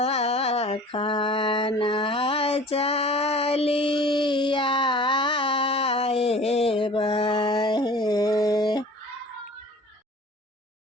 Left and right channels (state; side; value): normal; both; correlation 0.44